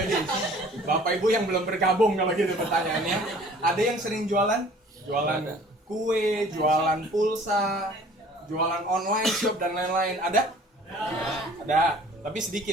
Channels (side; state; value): both; normal; correlation 0.51